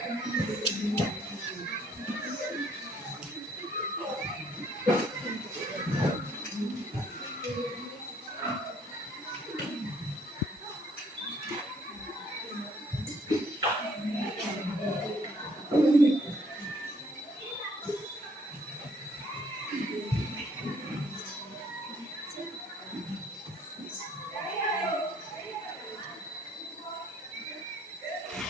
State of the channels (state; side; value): normal; both; correlation 0.63